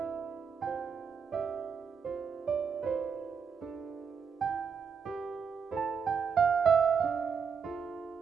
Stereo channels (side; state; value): left; quieter; 6.3 dB